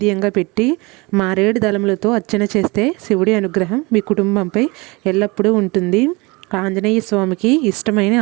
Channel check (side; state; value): left; quieter; 25.6 dB